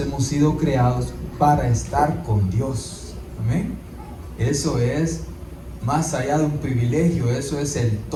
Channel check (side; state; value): both; identical; correlation 1.00